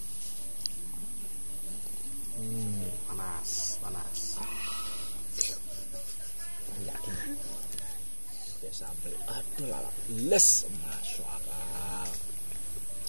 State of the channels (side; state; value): both; inverted; correlation -1.00